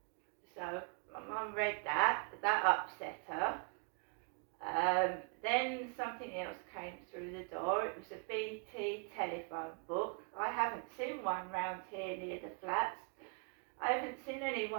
So my mum read that upset her. Then something else came through the door. It was a BT telephone book. I haven't seen one round here near the flats. I haven't seen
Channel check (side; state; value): left; quieter; 39.0 dB